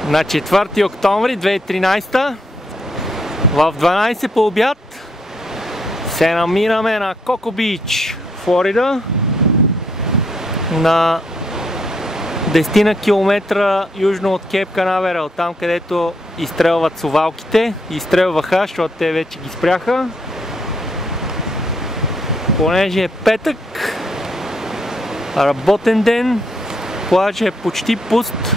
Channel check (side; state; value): both; normal; correlation 0.74